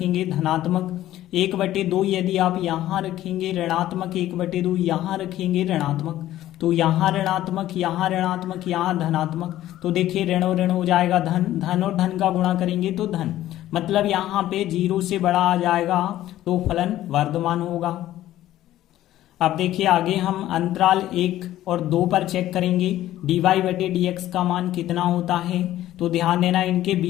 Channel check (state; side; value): quieter; right; 13.8 dB